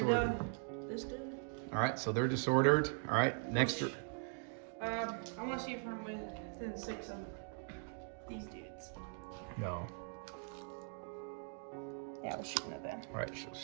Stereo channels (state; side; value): silent; left; 51 dB below the other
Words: This dude. All right, so they're disordered. All right, next. I want to see if I'm within 6 of these dudes. No. Yeah, we're shooting at them. All right, so